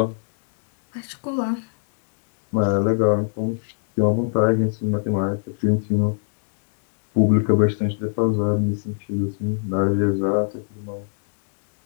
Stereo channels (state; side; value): silent; right; digital silence